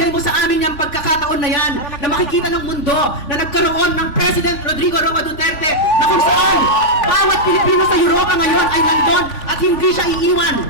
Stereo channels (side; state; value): right; late; 3.5 ms